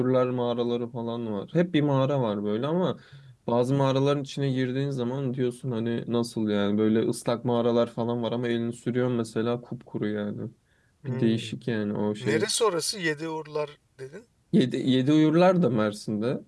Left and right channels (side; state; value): both; identical; correlation 1.00